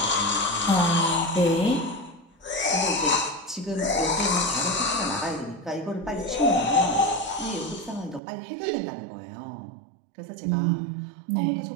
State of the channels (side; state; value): left; drops out; at 8.2 s